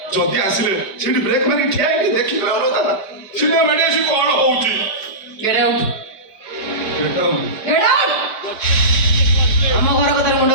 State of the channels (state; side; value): late; right; 4.8 ms